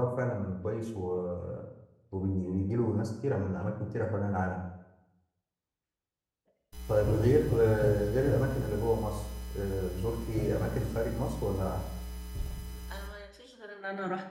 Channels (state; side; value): identical; both; correlation 1.00